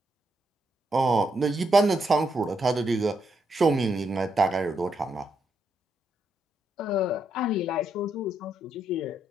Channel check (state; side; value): normal; both; correlation 0.78